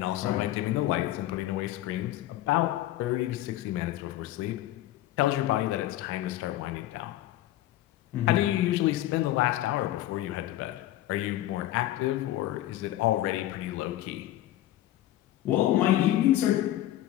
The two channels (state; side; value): quieter; right; 14.3 dB